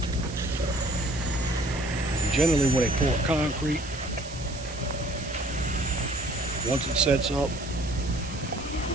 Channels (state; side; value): noise; right; hiss, 14 dB below the sound